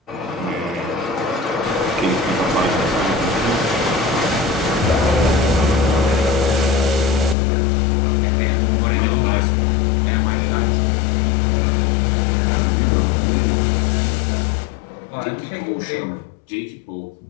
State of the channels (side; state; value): right; drops out; at 7.4 s